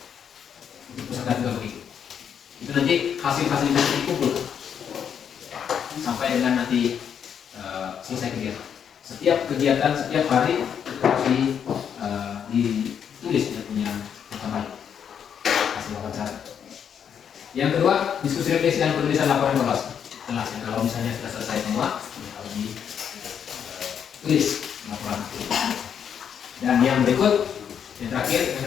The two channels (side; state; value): right; quieter; 8.1 dB